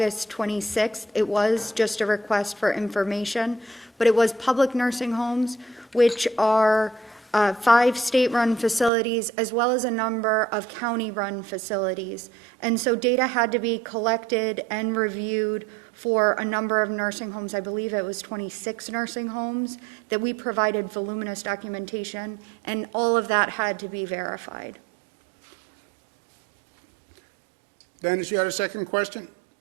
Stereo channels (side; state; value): left; drops out; at 8.9 s